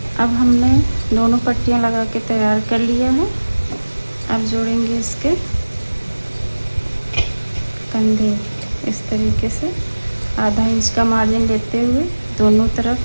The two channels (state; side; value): inverted; both; correlation -1.00